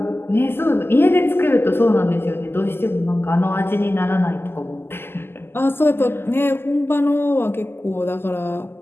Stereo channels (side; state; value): right; late; 0.11 ms